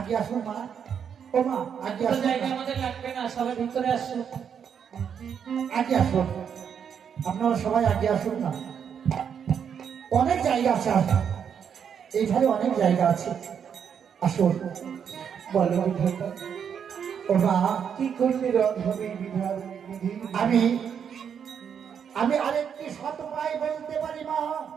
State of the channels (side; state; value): left; quieter; 7.7 dB